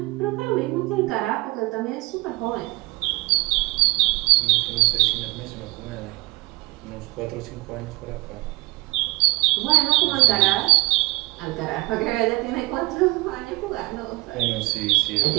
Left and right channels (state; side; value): quieter; left; 23.6 dB